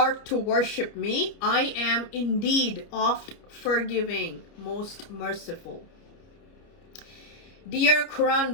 to worship me, I am indeed oft forgiving, most merciful. Dear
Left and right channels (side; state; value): right; late; 29 ms